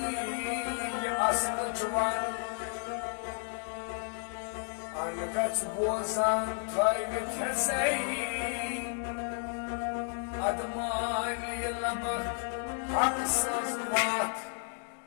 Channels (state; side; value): silent; right; 56 dB below the other